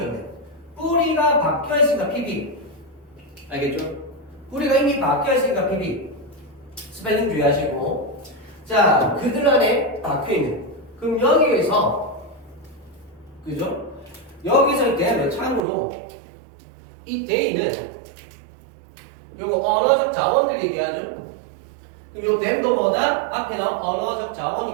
뿌리가 박혀있으니까 PB. 알겠죠? 뿌리가 이미 박혀있으니까 PB. 스펠링 주의하시고. 자, 그들 안에 박혀있는. 그럼 여기에서, 그죠? 여기서 이때 참고로 이 데이는 요거 언어적 자원들 얘기하죠? 그럼 요 댐도 뭐다? 앞에 나온 언어적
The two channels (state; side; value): drops out; left; at 15.6 s